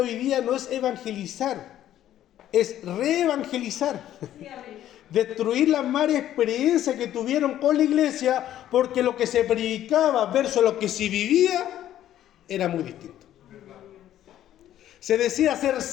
hoy día no es evangelizar, es reevangelizar. Destruir las malas experiencias que tuvieron con la iglesia, porque lo que se predicaba versus lo que se vivía era muy distinto. Se decía ser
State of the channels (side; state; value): right; quieter; 12.1 dB